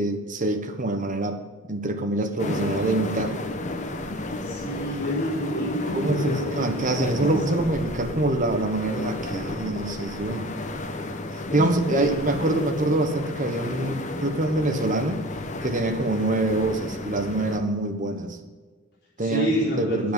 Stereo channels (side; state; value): both; normal; correlation 0.40